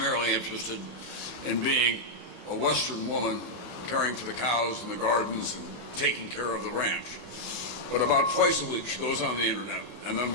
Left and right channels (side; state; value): left; late; 33 ms